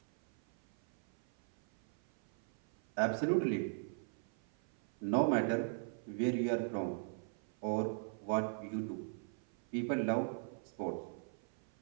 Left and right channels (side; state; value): left; silent; 52 dB below the other